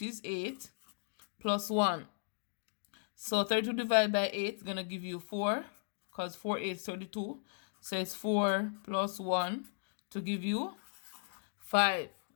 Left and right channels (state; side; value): silent; right; digital silence